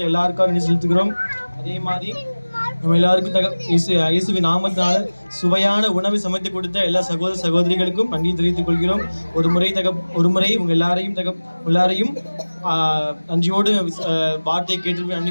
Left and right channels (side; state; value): both; inverted; correlation -1.00